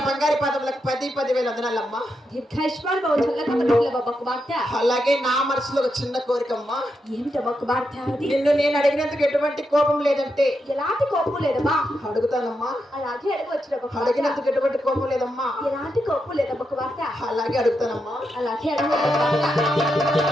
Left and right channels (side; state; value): both; normal; correlation 0.84